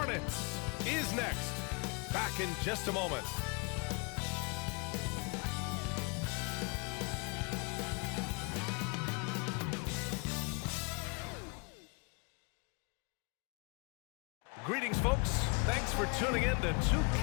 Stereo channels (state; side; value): quieter; right; 31.5 dB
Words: is next. Back in just a moment. Greetings, folks. Thanks for tuning in to